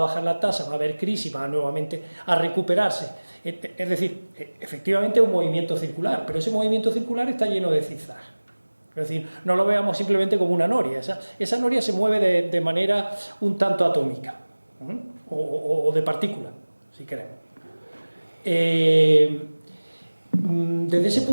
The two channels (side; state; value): both; inverted; correlation -1.00